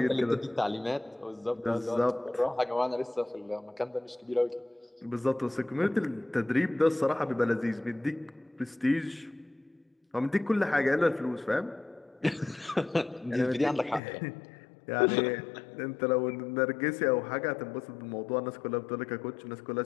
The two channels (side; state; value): right; drops out; at 14.0 s